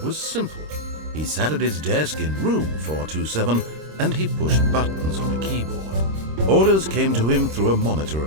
was simple. He sat at his desk in room 427 and he pushed buttons on a keyboard. Orders came to him through a monitor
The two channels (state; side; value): late; left; 26 ms